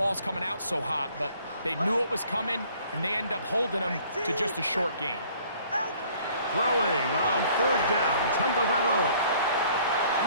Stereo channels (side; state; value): both; inverted; correlation -0.57